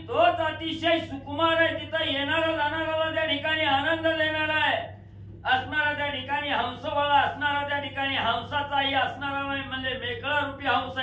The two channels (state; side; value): identical; both; correlation 1.00